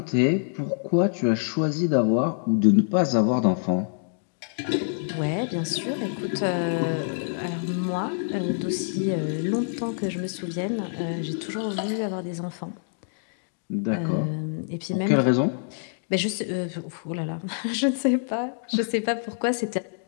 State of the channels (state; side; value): silent; right; digital silence